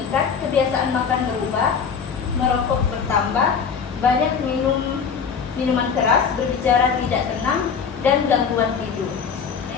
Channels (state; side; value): quieter; right; 6.4 dB